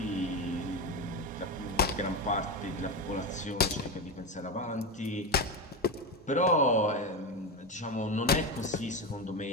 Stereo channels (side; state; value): both; normal; correlation 0.16